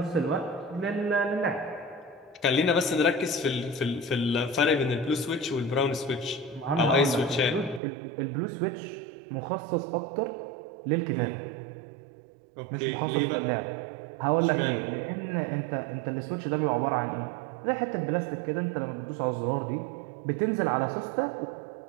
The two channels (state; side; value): drops out; left; at 7.8 s